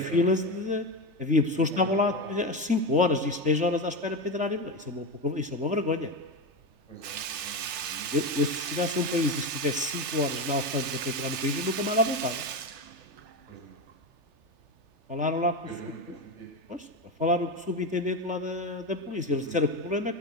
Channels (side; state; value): left; late; 3.4 ms